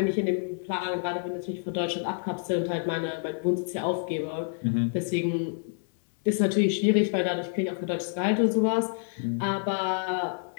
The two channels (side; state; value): right; silent; 59 dB below the other